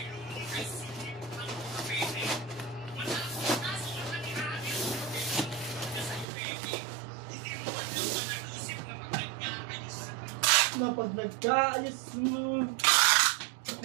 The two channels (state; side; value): drops out; left; at 6.2 s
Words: Pag nagkaayos mo.